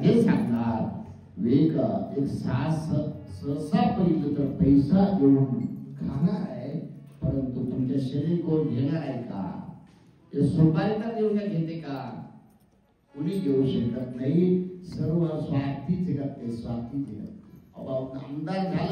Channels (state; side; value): identical; both; correlation 1.00